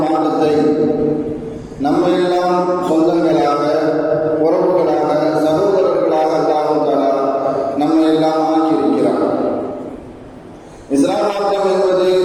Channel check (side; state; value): both; identical; correlation 1.00